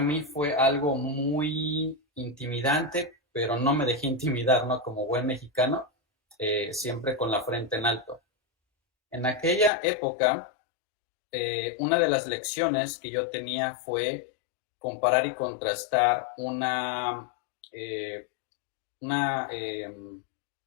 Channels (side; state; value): right; drops out; at 9.7 s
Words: mí fue algo muy intimidante, pero no me dejé intimidar, ¿no? Como buen mexicano, siempre con la frente en alto. En aquella época, una de las lecciones que yo tenía fue comparar y contrastar una